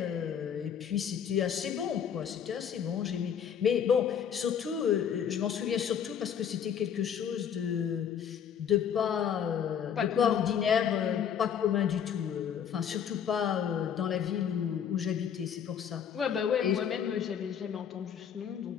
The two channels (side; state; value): right; quieter; 8.3 dB